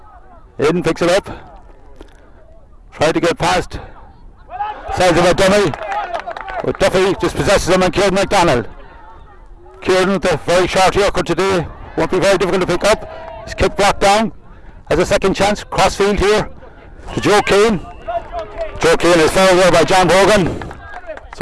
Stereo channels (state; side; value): identical; both; correlation 1.00